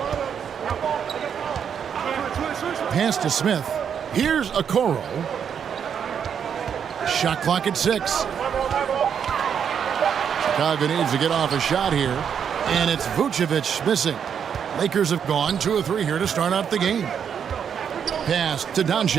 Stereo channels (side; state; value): left; quieter; 7.8 dB